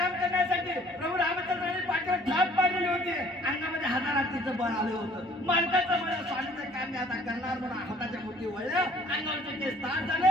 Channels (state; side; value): normal; both; correlation 0.56